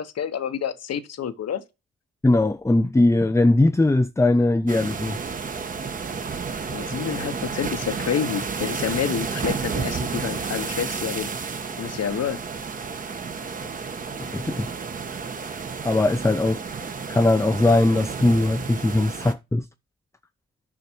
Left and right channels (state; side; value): normal; both; correlation 0.75